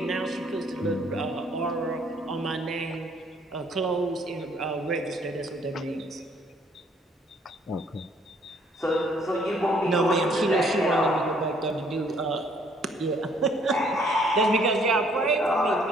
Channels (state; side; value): normal; both; correlation 0.63